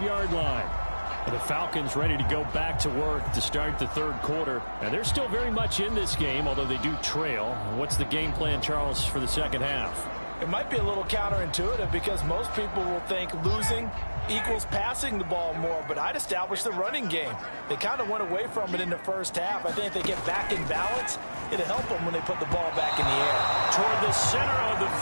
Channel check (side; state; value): both; inverted; correlation -1.00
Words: line. And the Falcons ready to go back to work to start the third quarter. And they're still very much in this game, although they do trail. What's the game plan, Charles, for the second half? It might be a little counterintuitive because most people will think losing equals passing the ball more, but I'd establish the running game. They kind of went away from it in the first half. I think if they get back in balance, it'll help them when they put the ball back in the air. Toward the center of the